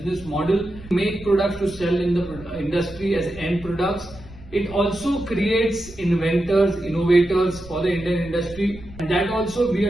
model, make products to sell in the industry as end products. It also creates inventors, innovators for the Indian industry, and that also we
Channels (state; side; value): noise; right; rumble, 19 dB below the sound